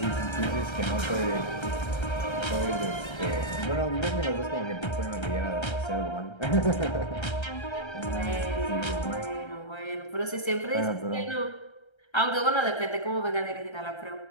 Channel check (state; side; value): late; right; 1.3 ms